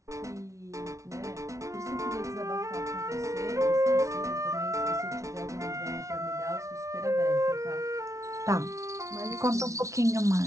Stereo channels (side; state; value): left; late; 0.15 ms